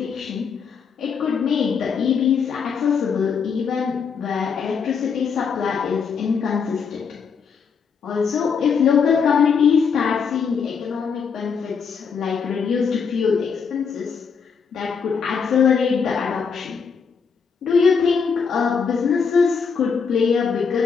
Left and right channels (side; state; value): right; quieter; 6.0 dB